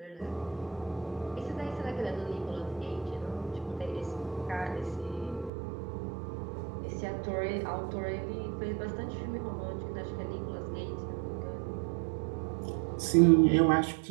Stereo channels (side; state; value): left; drops out; at 5.5 s